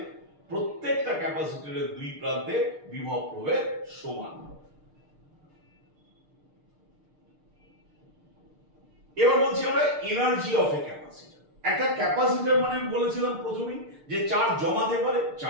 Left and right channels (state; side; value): late; left; 6.6 ms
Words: প্রত্যেকটা ক্যাপাসিটরের দুই প্রান্তে বিভব প্রভেদ সমান। এবার বলছি আমরা এনার্জি অফ এ ক্যাপাসিটর। একটা ক্যাপাসিটর মানে বলেছিলাম প্রথমেই যে চার্জ জমাতে পারে,